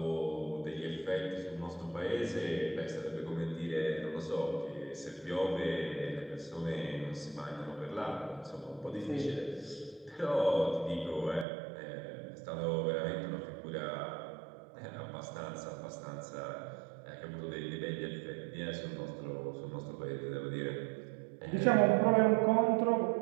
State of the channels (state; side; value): drops out; left; at 11.5 s